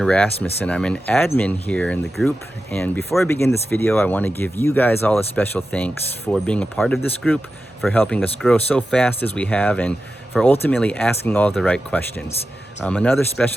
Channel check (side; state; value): both; normal; correlation 0.92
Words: Rasmussen. I'm an admin here in the group. And before I begin this video, I want to give you guys all a special thanks for being a part of this group, for helping us grow so fast as we have, and for ultimately asking all the right questions. Another